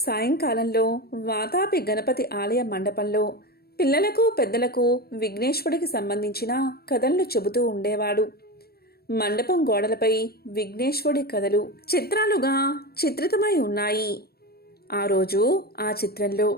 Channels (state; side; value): late; right; 0.45 ms